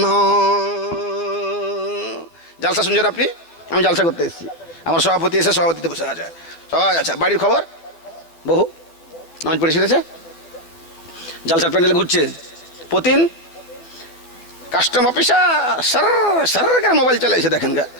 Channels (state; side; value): late; right; 12 ms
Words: জালসা শুনছেন আপনি? আমি জালসা করতে এসেছি, আমার সভাপতি এসে সভাপতিতে বসে আছে সবাই। আচ্ছা, বাড়ির খবর? বহু নামাজ পড়ে শিখেছে, জালসার প্যান্ডেলে ঘুরছে, প্রতিদিন কাস্টম অফিসার সার সার মোবাইল চালাইছে, দেখেন গা।